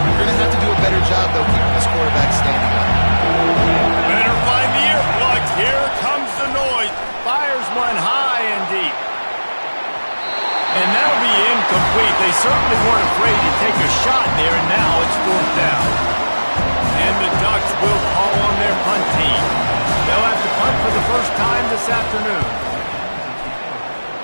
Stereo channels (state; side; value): inverted; both; correlation -1.00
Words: going to have to do a better job, though, keeping this quarterback standing up. Better find the earplugs. Here comes the noise. Fires one high and deep. And that'll be incomplete. They certainly weren't afraid to take a shot there, and now it's fourth down. And the Ducks will call on their punt team. They'll have to punt for the first time this afternoon.